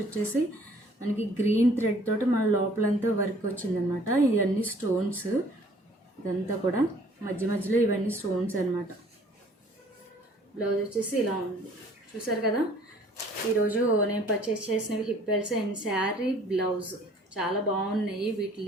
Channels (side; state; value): both; normal; correlation 0.56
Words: వచ్చేసి మనకి గ్రీన్ థ్రెడ్ తోటి మన లోపలంతా వర్క్ వచ్చిందనమాట. ఇవన్నీ స్టోన్స్, ఇదంతా కూడా మధ్య మధ్యలో ఇవన్నీ స్టోన్స్ అనమాట. బ్లౌజ్ వచ్చేసి ఇలా ఉంది, చూసారు కదా. ఈరోజు నేను పర్చేస్ చేసినవి hip belts and sari blouse చాలా బాగున్నాయి. వీటి